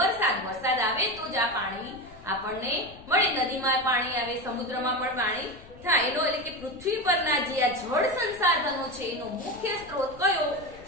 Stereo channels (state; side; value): noise; left; rumble, 21 dB below the sound